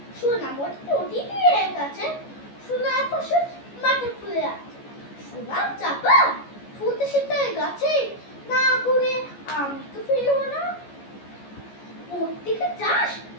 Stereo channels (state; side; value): late; right; 14 ms